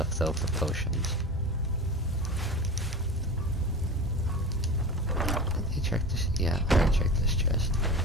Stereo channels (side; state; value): both; normal; correlation 0.31